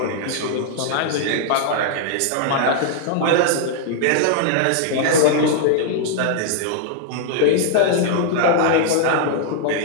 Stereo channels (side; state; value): both; different; correlation -0.01